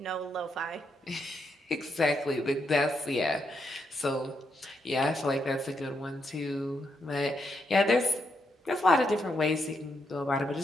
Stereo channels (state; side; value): normal; both; correlation 0.80